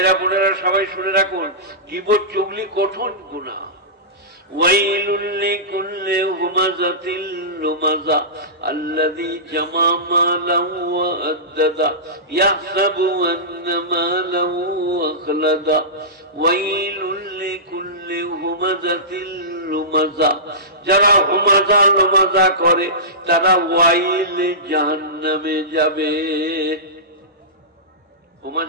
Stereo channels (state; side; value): normal; both; correlation -0.20